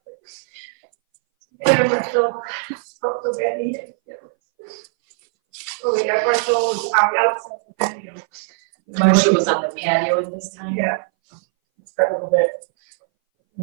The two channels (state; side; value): silent; left; 62 dB below the other